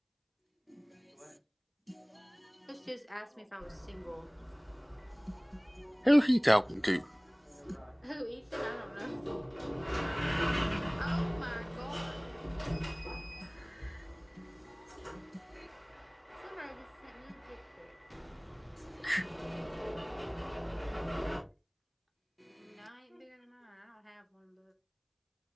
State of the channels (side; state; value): both; identical; correlation 1.00